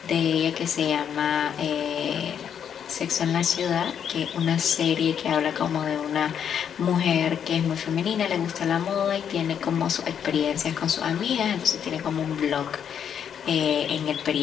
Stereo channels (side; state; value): right; quieter; 8.3 dB